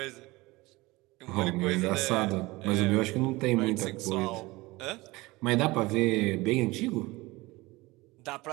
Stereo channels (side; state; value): left; quieter; 21.6 dB